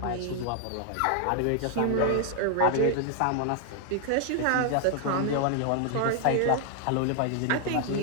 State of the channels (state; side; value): different; both; correlation 0.00